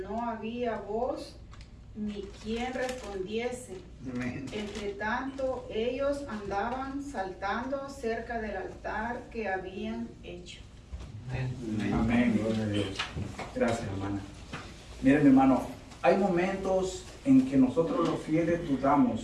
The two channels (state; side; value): identical; both; correlation 1.00